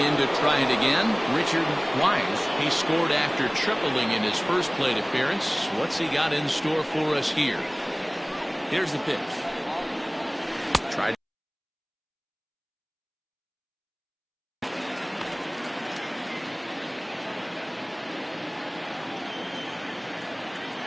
to try it again, Richard Wise. He scored after tripling in his first plate appearance. What's he got in store for us here? Here's the pitch. Tried.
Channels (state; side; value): identical; both; correlation 1.00